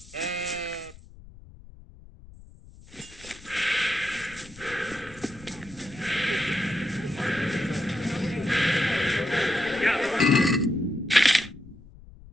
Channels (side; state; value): left; noise; rumble, 20 dB below the sound